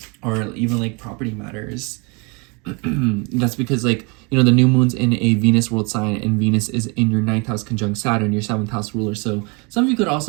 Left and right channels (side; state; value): left; quieter; 30.4 dB